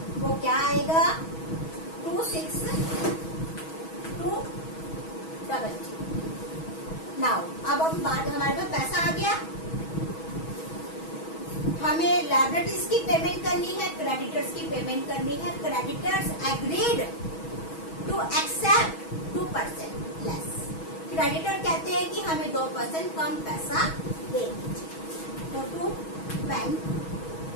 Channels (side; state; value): right; late; 6.2 ms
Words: वो क्या आएगा 26,200। नाउ अब हम बात, हमारे पास पैसा आ गया। हमें लायबिलिटीज की पेमेंट करनी है, क्रेडिटर्स की पेमेंट करनी है। Creditors agreed to accept 2% less. Creditor कहते हैं कि हमें 2% कम पैसा दे दीजिए, तो टू बैंक